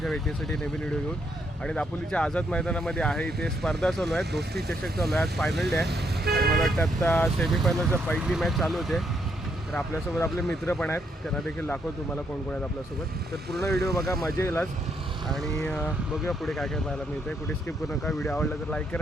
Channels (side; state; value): both; normal; correlation 0.75